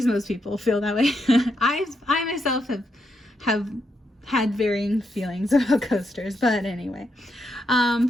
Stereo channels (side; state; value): both; normal; correlation 0.81